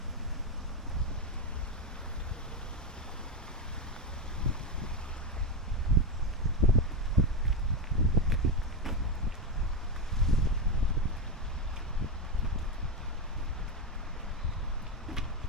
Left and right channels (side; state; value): both; normal; correlation 0.12